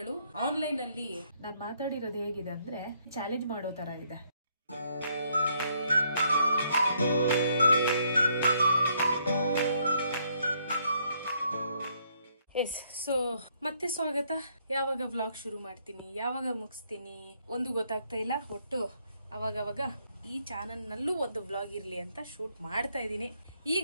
ಆನ್ಲೈನ್ ಅಲ್ಲಿ ನಾನ್ ಮಾತಾಡಿರೋದು ಹೇಗಿದೆ ಅಂದ್ರೆ ಚಾಲೆಂಜ್ ಮಾಡೋ ತರ ಇದೆ. ಎಸ್, ಸೊ ಮತ್ತೆ ಸ್ವಾಗತ. ಯಾವಾಗ ವ್ಲಾಗ್ ಶುರು ಮಾಡ್ತೀನಿ, ಯಾವಾಗ ಮುಗಿಸ್ತೀನಿ ಒಂದು ಗೊತ್ತಾಗ್ತಾ ಇಲ್ಲ. ಒಟ್ಟು ಅವಾಗವಾಗ ಈ ಚಾನಲ್ ನಲ್ಲೂ ಒಂದು ವ್ಲಾಗ್ ಇರ್ಲಿ ಅಂತ ಶೂಟ್ ಮಾಡ್ತಾ ಇದ್ದೀನಿ.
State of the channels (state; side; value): inverted; both; correlation -0.70